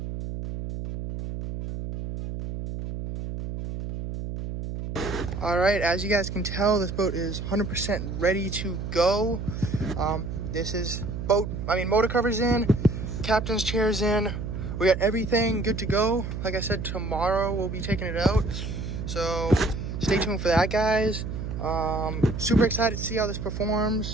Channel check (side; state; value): right; noise; hum, 5 dB below the sound